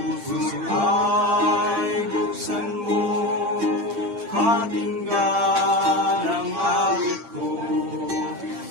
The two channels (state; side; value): late; left; 8.8 ms